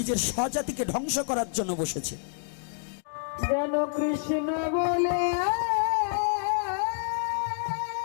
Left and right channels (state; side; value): silent; right; digital silence